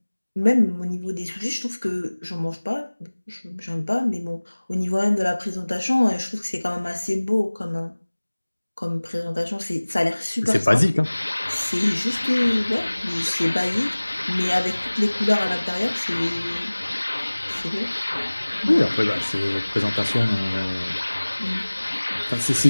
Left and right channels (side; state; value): both; inverted; correlation -1.00